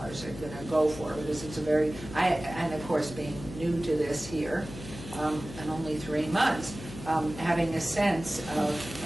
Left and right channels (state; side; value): noise; left; hum, 13 dB below the sound